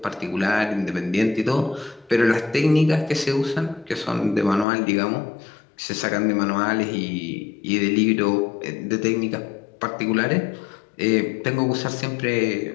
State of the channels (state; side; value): drops out; right; at 4.7 s